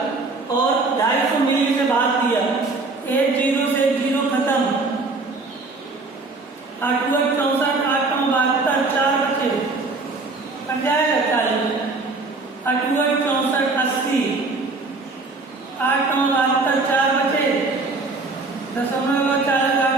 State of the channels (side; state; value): left; quieter; 3.6 dB